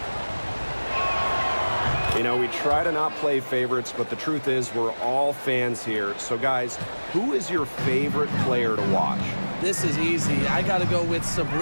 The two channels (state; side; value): inverted; both; correlation -1.00